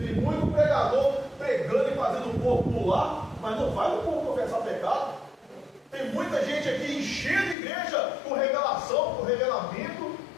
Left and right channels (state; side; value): drops out; right; at 7.6 s